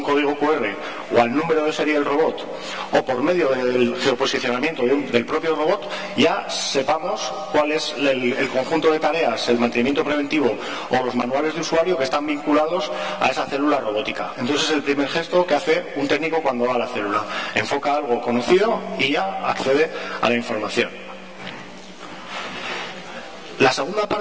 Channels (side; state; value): both; identical; correlation 1.00